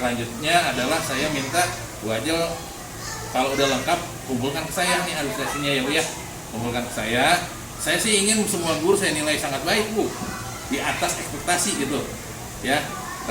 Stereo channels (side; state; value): both; identical; correlation 1.00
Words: adalah saya minta Bu Ajel Kalau udah lengkap, kumpulkan ke saya nih administrasinya ya Bu ya. Kumpulkan ke saya. Saya sih ingin semua guru saya nilai sangat baik Bu, di atas ekspektasi gitu ya.